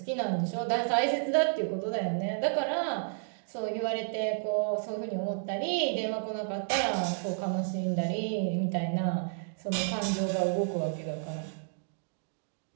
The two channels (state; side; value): silent; left; digital silence